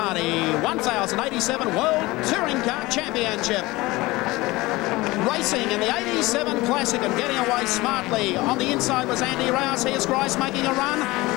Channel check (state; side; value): quieter; right; 20.7 dB